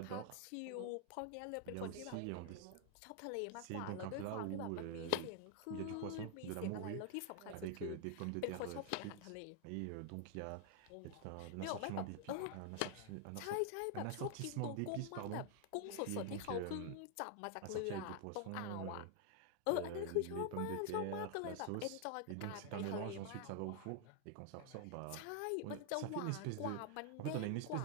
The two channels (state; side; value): different; both; correlation 0.00